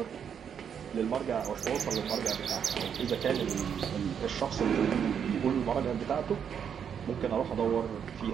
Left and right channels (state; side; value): quieter; left; 7.8 dB